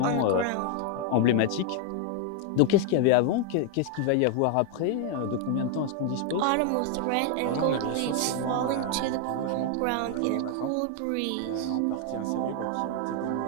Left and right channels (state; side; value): different; both; correlation 0.00